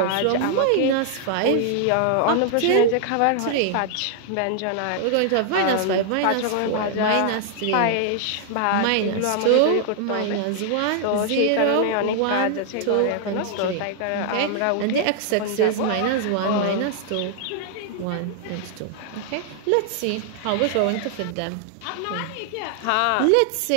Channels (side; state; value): both; different; correlation 0.00